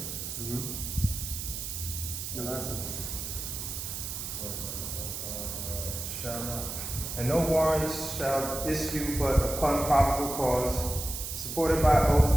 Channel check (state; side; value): noise; right; hiss, 6 dB below the sound